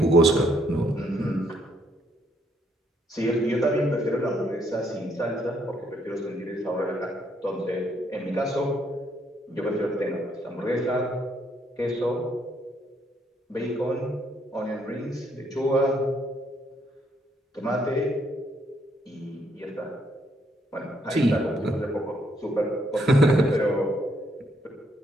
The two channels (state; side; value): normal; both; correlation 0.71